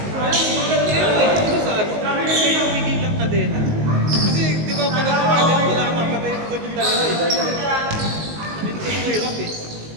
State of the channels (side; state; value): left; late; 19 ms